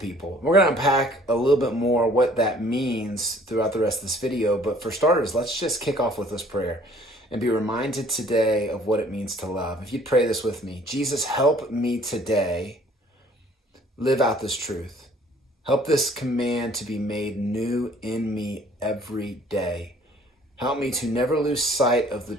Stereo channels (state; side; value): normal; both; correlation 0.55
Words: We're going to unpack a little bit more what that means throughout the rest of this video. But for starters, let's just kick off with this prayer and be reminded today of what it means to love. If you'd pray this with me: Jesus, help me today live out this truth. Help this command to be made new in me every day. Help me to never lose sight of the